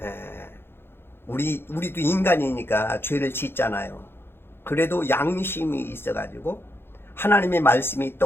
우리도 인간이니까 죄를 짓잖아요. 그래도 양심이 있어가지고 하나님의 말씀이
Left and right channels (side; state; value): right; late; 0.11 ms